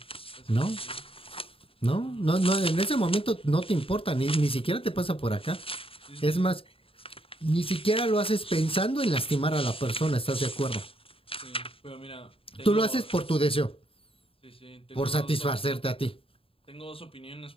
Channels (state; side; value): late; right; 0.27 ms